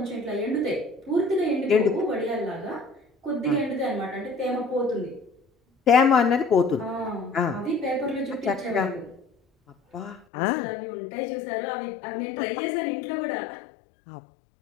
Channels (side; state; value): right; drops out; at 10.2 s